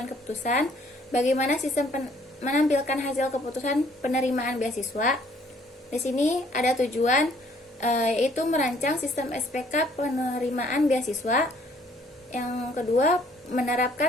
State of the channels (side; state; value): both; normal; correlation 0.62